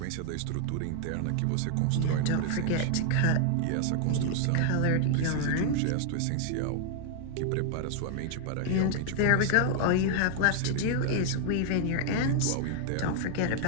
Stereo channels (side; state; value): both; different; correlation 0.00